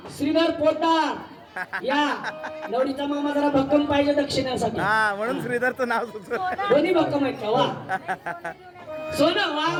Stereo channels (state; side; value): identical; both; correlation 1.00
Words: श्रीधर पोतदार या. नवरीचा मामा जरा भक्कम पाहिजे दक्षिणेसाठी. हा म्हणून श्रीधरचं नाव सुचलं. दोन्ही भक्कम आहेत का? वा सोनं वा